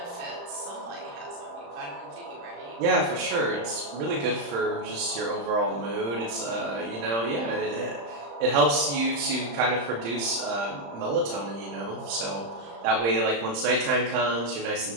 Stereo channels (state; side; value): late; left; 35 ms